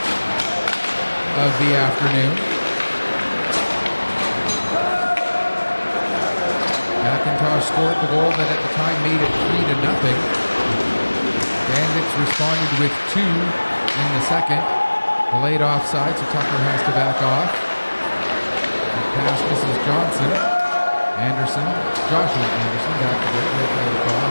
of the afternoon. McIntosh scored the goal that at the time made it 3-0. Bandits responded with 2 in the second. Delayed offside, so Tucker has to back off. The pass misses Johnson. Joshua Anderson back to right, play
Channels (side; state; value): both; inverted; correlation -1.00